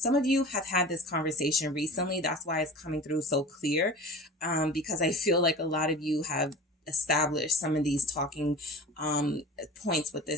of you have had this conversation recently. That's why it's coming through so clear. Because I feel like a lot of you have establish some of these talking points with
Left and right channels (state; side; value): normal; both; correlation 0.37